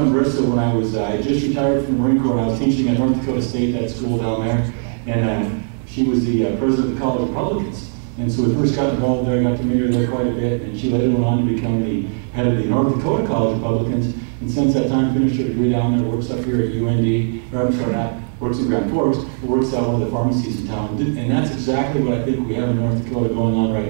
Marissa when I just retired from the Marine Corps, and I was teaching at North Dakota State, that school down there. And she was the president of the College of Republicans. And so we first got involved there, got to meet her there quite a bit, and she later went on to become the head of the North Dakota College of Republicans. And since that time, finished her degree down there, works up here at UND, or I'm sorry, not works in Grand Forks, but works at one of the pharmacies in town. And that's exactly what I think we have in North Dakota going on right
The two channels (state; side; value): silent; left; 66 dB below the other